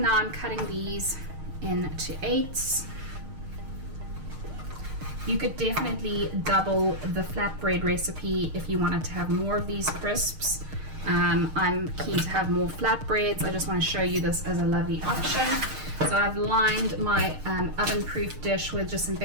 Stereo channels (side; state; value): left; late; 6.5 ms